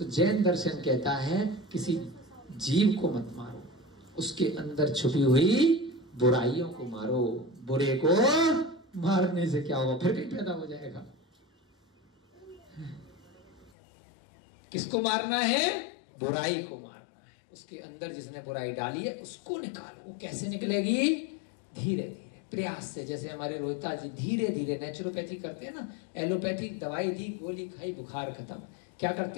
जैन दर्शन कहता है किसी जीव को मत मारो, उसके अंदर छुपी हुई बुराइयों को मारो। बुरे को मारने से क्या होगा, फिर कहीं पैदा हो जाएगा। किसको मारना है, बुराई को मारना है। उसके अंदर जिसने बुराई डाली है उसको निकालो। वो कैसे निकलेगी, धीरे धीरे प्रयास से। जैसे हमारे रोहिता जी धीरे धीरे नेचुरोपैथी करते हैं ना, एलोपैथिक दवाई दी, गोली खाई, बुखार खत्म। क्या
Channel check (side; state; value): right; drops out; at 13.7 s